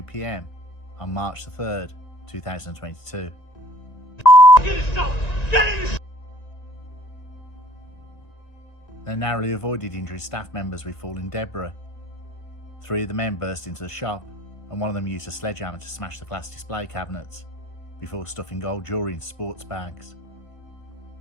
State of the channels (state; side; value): late; right; 1.9 ms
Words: PM on March 3rd, 2022. They narrowly avoided injuring staff members with falling debris. 3 of the men burst into the shop and one of them used a sledgehammer to smash the glass display cabinets before stuffing gold jewellery into sports bags.